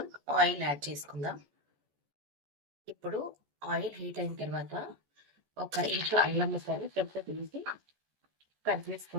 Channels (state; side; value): late; left; 14 ms